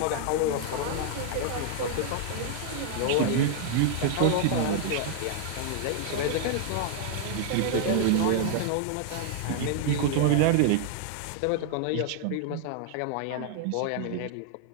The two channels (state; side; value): different; both; correlation -0.01